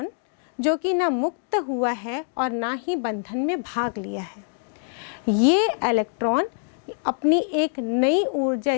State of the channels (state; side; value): silent; right; 62 dB below the other